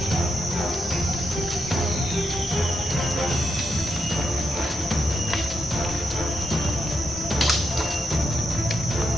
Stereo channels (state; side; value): normal; both; correlation 0.83